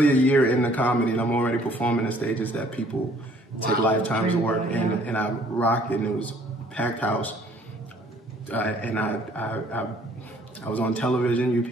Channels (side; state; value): both; normal; correlation 0.59